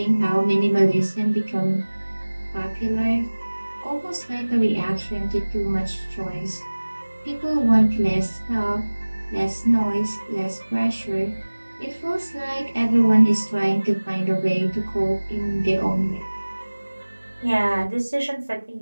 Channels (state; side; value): inverted; both; correlation -1.00